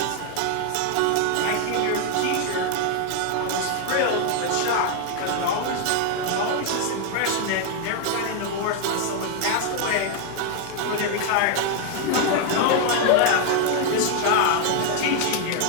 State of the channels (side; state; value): both; different; correlation 0.00